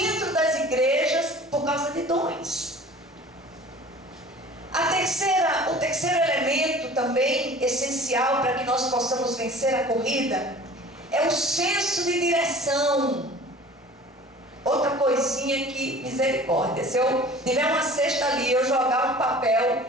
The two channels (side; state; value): both; normal; correlation 0.44